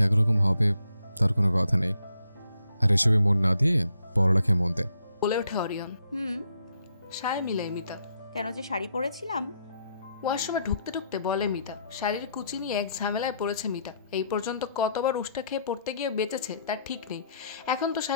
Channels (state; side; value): inverted; both; correlation -0.73